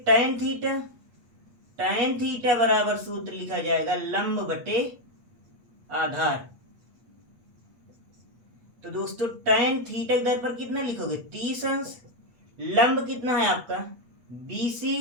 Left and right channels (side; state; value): left; late; 8.4 ms